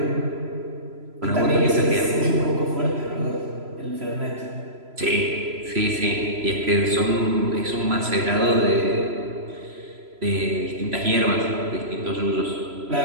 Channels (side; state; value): left; late; 3.0 ms